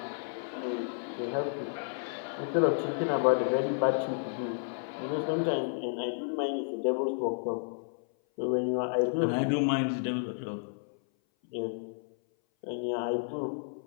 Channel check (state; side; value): silent; right; 57 dB below the other